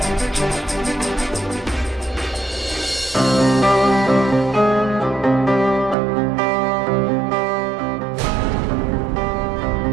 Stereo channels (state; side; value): drops out; left; at 6.0 s